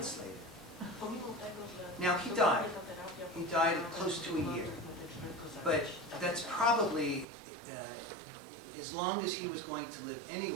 later. Now, he died. He died close to a year. But that's probably as long as he was going to live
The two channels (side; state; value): left; drops out; at 7.2 s